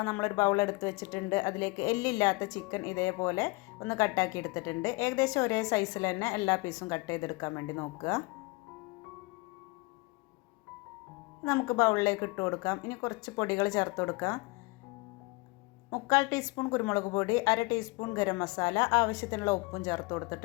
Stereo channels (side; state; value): right; quieter; 25.0 dB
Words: നമ്മളൊരു ബൗൾ എടുത്ത് വെച്ചിട്ടുണ്ട്. അതിലേക്ക് എല്ലില്ലാത്ത ചിക്കൻ ഇതേപോലെ ഒന്ന് കട്ടാക്കി എടുത്തിട്ടുണ്ട്. ഏകദേശം ഒരേ സൈസിൽ തന്നെ എല്ലാ പീസും കട്ട് ചെയ്തെടുക്കാൻ വേണ്ടി നോക്കുക. നമുക്ക് ബൗളിലേക്ക് ഇട്ട് കൊടുക്കാം. ഇനി കുറച്ച് പൊടികൾ ചേർത്ത് കൊടുക്കാം. 3/4 ടീസ്പൂൺ കുരുമുളക് പൊടി, 1/2 ടീസ്പൂൺ ഗരം മസാല, ആവശ്യത്തിനുള്ള ഉപ്പും ചേർത്ത്